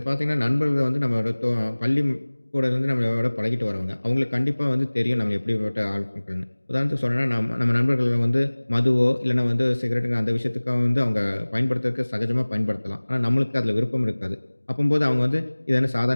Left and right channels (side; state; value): both; inverted; correlation -1.00